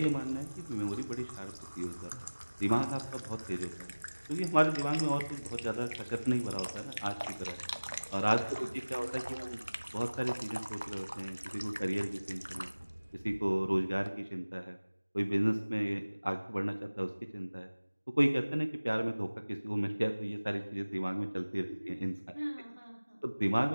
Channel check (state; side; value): inverted; both; correlation -1.00